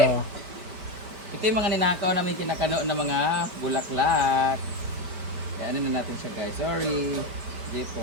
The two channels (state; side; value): late; left; 5.3 ms